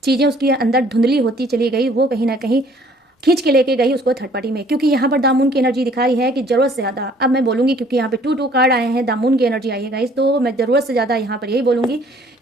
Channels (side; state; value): both; normal; correlation 0.58